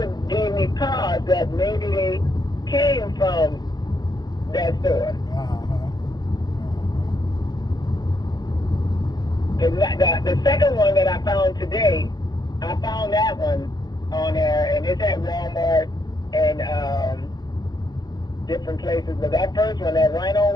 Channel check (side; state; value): right; late; 0.19 ms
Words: gave me pause that maybe they came from that store. The second one that I found today, I found that one on there, and it's at Walmart and different places. But that first one, that Rhino